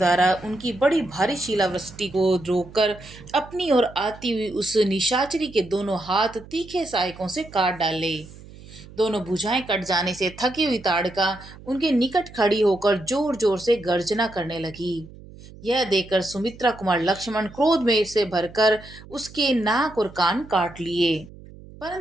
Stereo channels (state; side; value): noise; right; hum, 19 dB below the sound